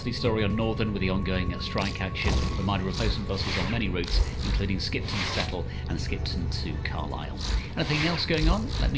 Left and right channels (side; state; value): both; identical; correlation 1.00